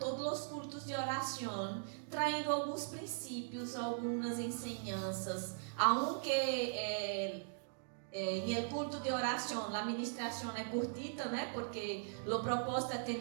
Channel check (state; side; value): silent; left; digital silence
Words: os cultos de oração, traindo alguns princípios, algumas enseñanças, aunque em el culto de oração, a ministração é curtita, né? Porque o propósito é